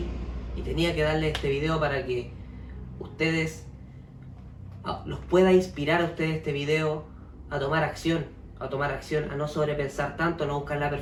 y tenía que darle este video para que ustedes los pueda inspirar a ustedes este video a tomar acción, a no sobrepensar tanto, a no buscar la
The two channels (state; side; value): identical; both; correlation 1.00